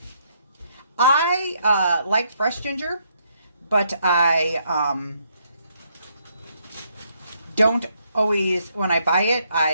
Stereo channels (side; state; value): both; inverted; correlation -0.72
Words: I like fresh ginger, but I don't always, when I buy it,